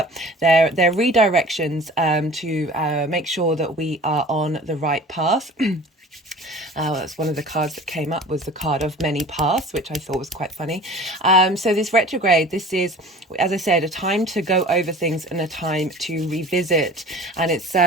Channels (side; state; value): both; normal; correlation 0.43